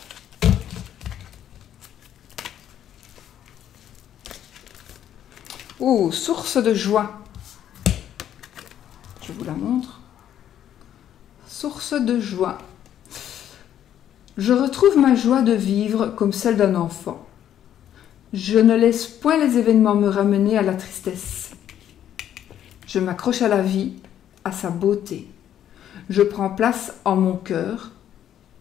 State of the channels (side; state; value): right; quieter; 10.6 dB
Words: ? Oh, source de joie. Je vous la montre. Source de joie. Je retrouve ma joie de vivre comme celle d'un enfant. Je ne laisse point les événements me ramener à la tristesse. Je m'accroche à la vie, à sa beauté. Je prends place en mon cœur